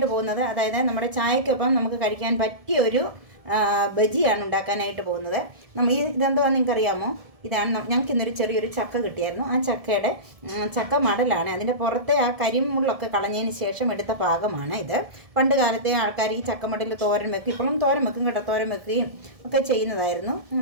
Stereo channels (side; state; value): left; late; 1.7 ms